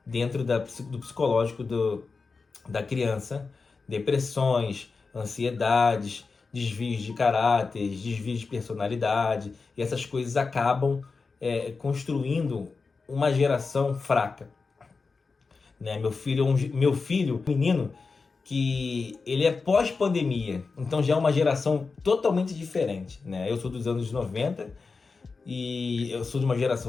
dentro do psicológico da criança, depressões, ansiedades, desvios de caráter, desvios de personalidade, e essas coisas acabam construindo uma geração fraca, né? Meu filho, menino, que ele é pós-pandemia, então já é uma geração totalmente diferente, né? Eu sou dos anos 90 e eu sou de uma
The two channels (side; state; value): right; quieter; 4.5 dB